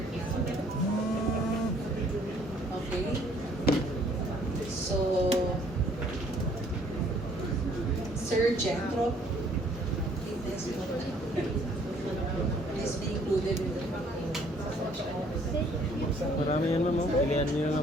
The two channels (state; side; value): normal; both; correlation 0.61